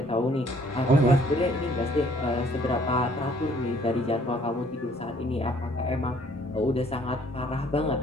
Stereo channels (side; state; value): both; normal; correlation 0.60